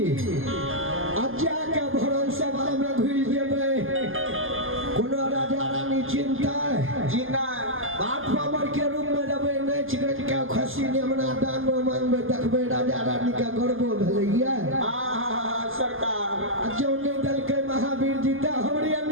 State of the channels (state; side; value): late; left; 0.59 ms